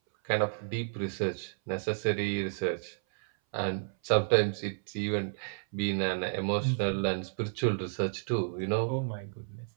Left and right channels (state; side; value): silent; left; 57 dB below the other